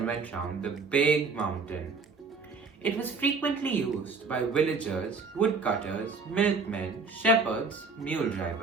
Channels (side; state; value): left; quieter; 4.4 dB